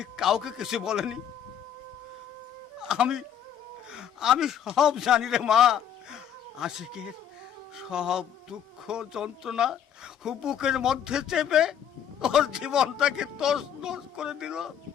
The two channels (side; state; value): right; quieter; 9.1 dB